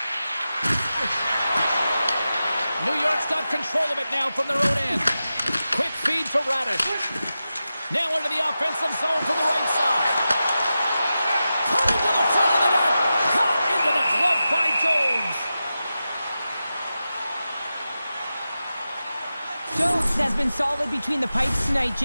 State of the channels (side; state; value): both; inverted; correlation -0.92